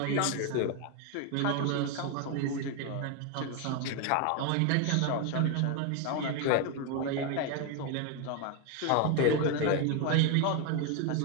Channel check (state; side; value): different; both; correlation 0.01